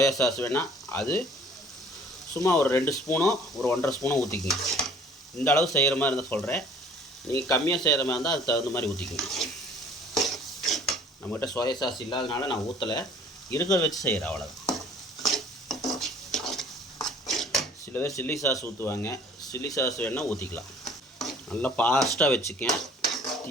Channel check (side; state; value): both; normal; correlation 0.52